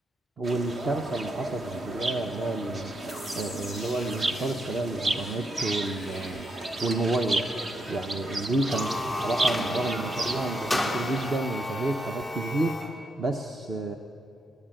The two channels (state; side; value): normal; both; correlation 0.79